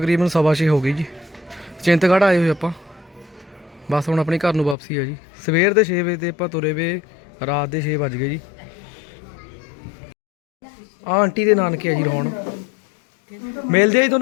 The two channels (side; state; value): right; drops out; at 4.8 s